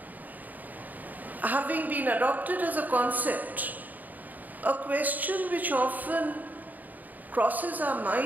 having been adopted as a concept, a question which often crosses our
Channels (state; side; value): late; left; 0.082 ms